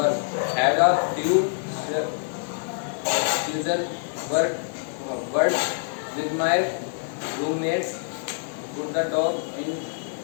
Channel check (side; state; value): right; silent; digital silence